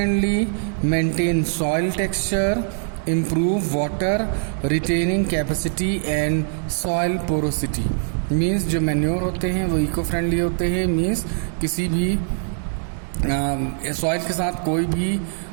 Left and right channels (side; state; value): left; silent; 64 dB below the other